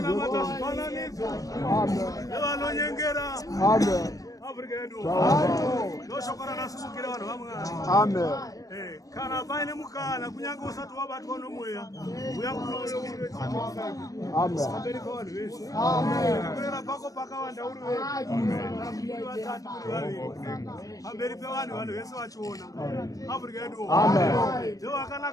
Amen. Kana paine mukana kunyange usati wabatwa nomweya uyakunoyo kuera pako pakawanda uri vatatu kuri vaviri pamberi pevanhu vanhu vese vachiona afrika yedu ndo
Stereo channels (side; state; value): right; late; 0.17 ms